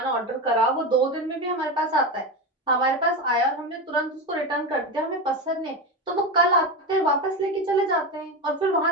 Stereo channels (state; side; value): normal; both; correlation 0.18